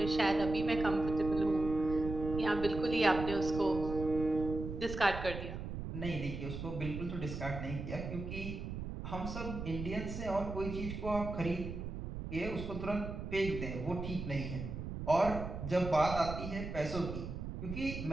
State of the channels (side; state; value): right; noise; rumble, 6 dB below the sound